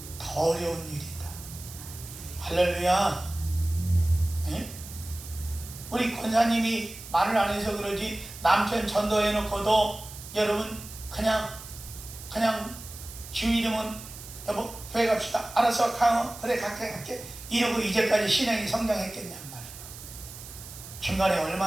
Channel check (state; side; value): noise; right; hiss, 14 dB below the sound